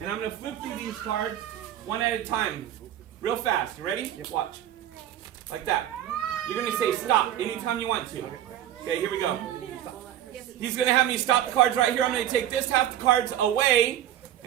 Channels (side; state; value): left; quieter; 11.6 dB